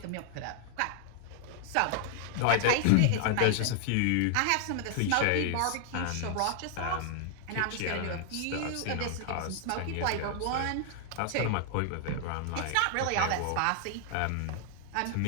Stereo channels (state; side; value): different; both; correlation -0.01